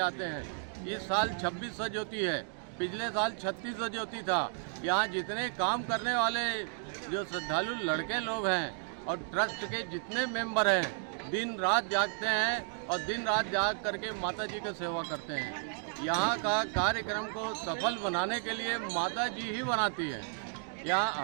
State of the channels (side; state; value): left; silent; 56 dB below the other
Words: आते हैं। इस साल 26 सजोती है, पिछले साल 36 सजोती था। यहाँ जितने काम करने वाले जो श्रद्धालु लड़के लोग हैं और ट्रस्ट के जितने मेंबर हैं दिन रात जागते हैं और दिन रात जाग करके माता जी की सेवा करते हैं। यहाँ का कार्यक्रम को सफल बनाने के लिए माता जी ही बनाती है। यहाँ